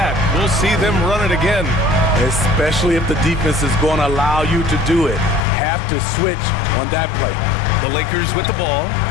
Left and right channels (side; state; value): right; drops out; at 5.4 s